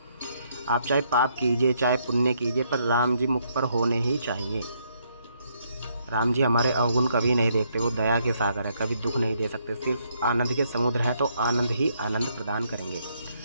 आप चाहे पाप कीजिए चाहे पुण्य कीजिए, पर राम जी मुख पर होने ही चाहिए। राम जी हमारे अवगुण कभी नहीं देखते। वो दया के सागर है, कभी दुख नहीं दे सकते। सिर्फ आनंद के समुद्र हैं, तो आनंद ही आनंद प्रदान करेंगे।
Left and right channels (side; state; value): both; inverted; correlation -0.72